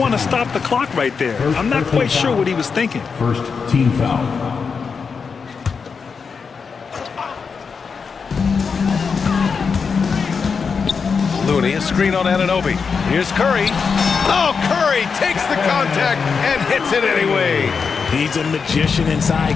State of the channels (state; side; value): quieter; right; 5.5 dB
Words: to stop the clock right there. I'm not quite sure what he was thinking. First team foul. Looney, a screen on Anunoby. Here's Curry. Oh, Curry takes the contact and hits it anyway. He's a magician